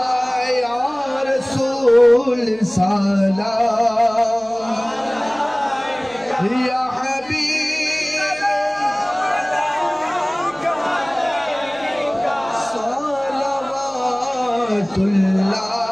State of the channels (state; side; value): noise; right; hum, 26 dB below the sound